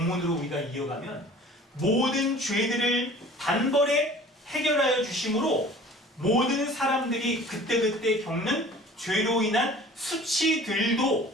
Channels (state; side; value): normal; both; correlation 0.46